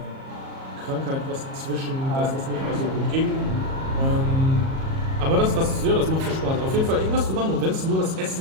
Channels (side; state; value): left; late; 37 ms